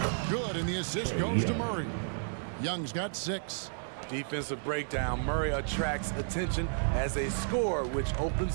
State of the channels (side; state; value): left; silent; 56 dB below the other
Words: Good, and the assist goes to Murray. Young's got 6. Defensive breakdown. Murray attracts attention as a scorer, which